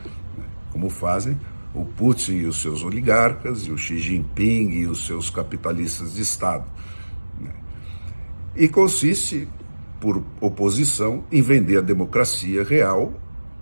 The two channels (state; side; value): inverted; both; correlation -1.00